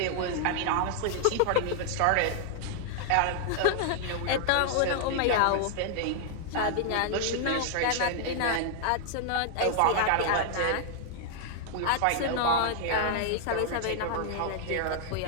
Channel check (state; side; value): different; both; correlation 0.00